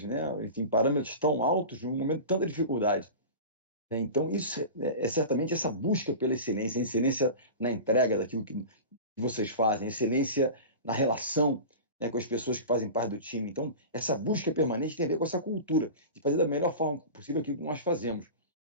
enfim, parâmetros tão altos num momento de tanta dificuldade. Então, isso é certamente essa busca pela excelência, a excelência na entrega daquilo que vocês fazem, a excelência na relação com as pessoas que fazem parte do time. Então, essa busca permanente tem a ver com essa cultura de fazer da melhor forma possível aquilo que nós fazemos.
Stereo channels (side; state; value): both; inverted; correlation -0.32